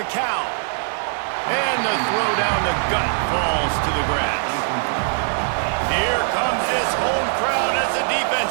And the throw down the gut falls to the grass. Here comes this home crowd as the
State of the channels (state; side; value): silent; left; digital silence